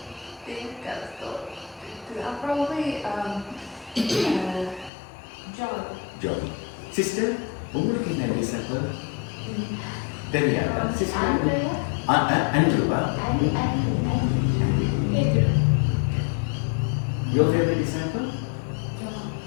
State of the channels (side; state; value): right; drops out; at 4.9 s